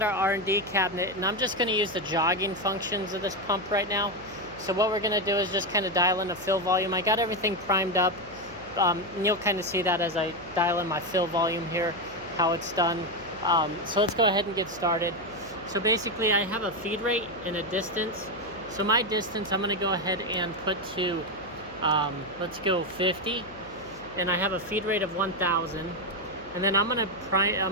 our R&D cabinet, and I'm just going to use the jogging functions of this pump right now. So what we're going to do is just kind of dial in the fill volume. I got everything primed up, and you'll kind of see that as I dial in my fill volume here, how it's done. So let's go ahead and get started. So basically I have a feed rate and a distance. So my distance I'm going to go ahead and put to, let's go 50. And I have a feed rate of 1,000, and then I'm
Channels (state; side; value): noise; left; hum, 21 dB below the sound